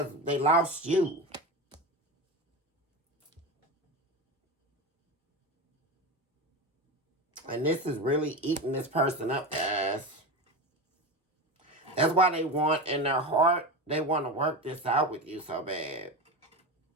they lost you. And this is really eating this person up, guys. That's why they want, in their heart, they want to work this out with you so bad.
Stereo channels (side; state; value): both; normal; correlation 0.22